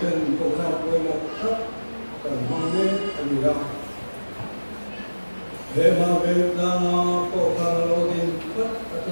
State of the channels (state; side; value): inverted; both; correlation -1.00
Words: trận tổ chức với một tất cần mang đến anh ra để mà về ra tổ chức lâu tin tất